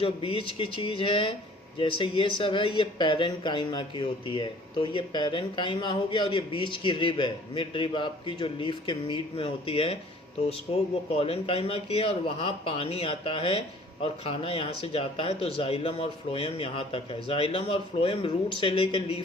बीच की चीज़ है, जैसे ये सब है, ये पैरन काइमा की होती है। तो ये पैरन काइमा हो गया, और ये बीच की रिब है, मिड रिब आपकी जो लीफ के मीड में होती है, तो उसको वो कॉलन काइमा की है, और वहाँ पानी आता है और खाना यहाँ से जाता है। तो जाइलम और फ्लोएम यहाँ तक है। जाइलम और फ्लोएम रूट से लेकर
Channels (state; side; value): normal; both; correlation 0.52